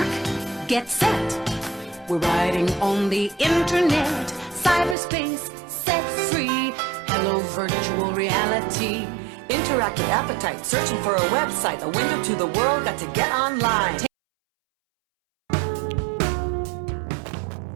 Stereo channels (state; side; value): drops out; left; at 5.0 s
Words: get set. We're riding on the internet, cyberspace, set free. Hello, virtual reality. Interactive appetite, searching for a website, a window to the world, got to get online. Okay,